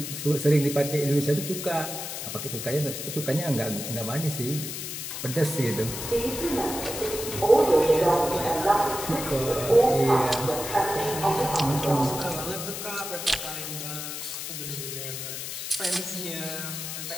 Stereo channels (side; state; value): left; noise; hiss, 6 dB below the sound